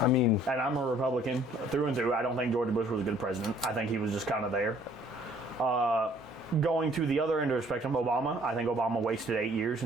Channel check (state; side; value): normal; both; correlation 0.59